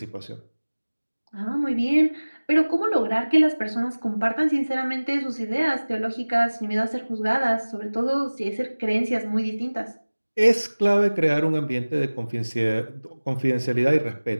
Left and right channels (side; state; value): both; inverted; correlation -1.00